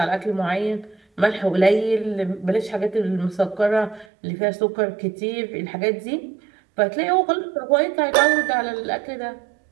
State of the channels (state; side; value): drops out; left; at 4.0 s